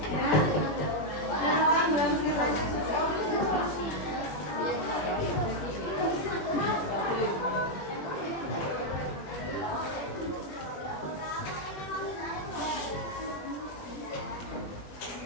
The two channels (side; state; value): right; late; 21 ms